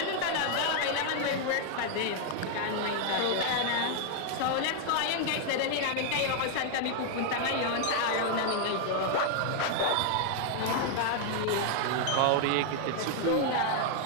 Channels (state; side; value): different; both; correlation 0.00